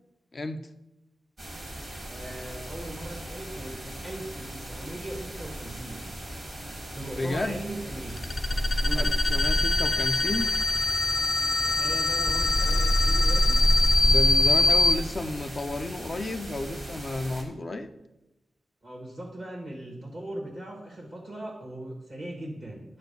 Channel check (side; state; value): both; normal; correlation 0.88